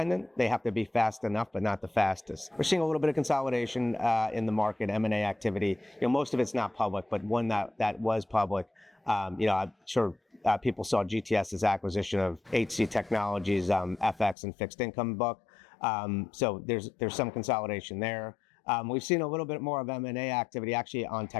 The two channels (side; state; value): right; drops out; at 14.4 s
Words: They have to be fast enough, but not the fastest. We're seeing a little bit of consolidation in the market, M&A activity. Most of it's not public, but one that was public, I'm sure people saw GTS's acquisition of HC Technologies, FX and fixed income book. So there's some consolidation there. We've seen a little bit more of M&A activity actually on